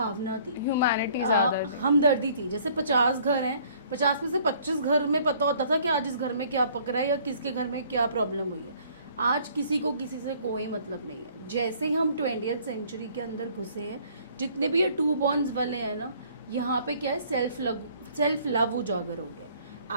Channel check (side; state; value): both; inverted; correlation -0.58